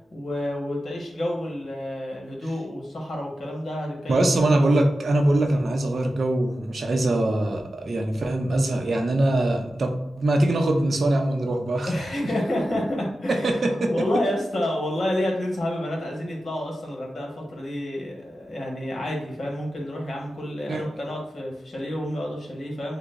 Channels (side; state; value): both; normal; correlation 0.92